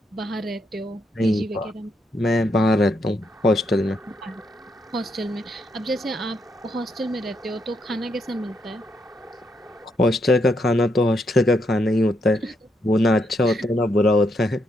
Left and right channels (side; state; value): both; normal; correlation 0.78